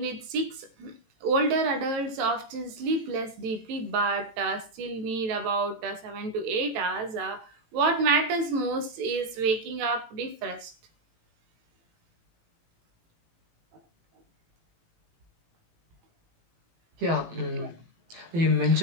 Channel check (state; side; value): late; left; 18 ms